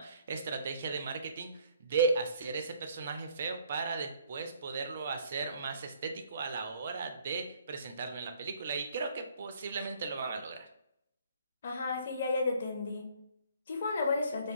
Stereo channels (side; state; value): both; inverted; correlation -0.62